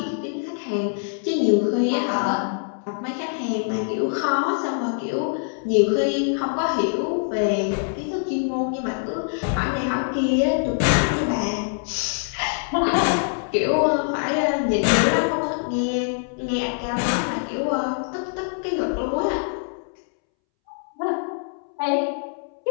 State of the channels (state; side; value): silent; right; 63 dB below the other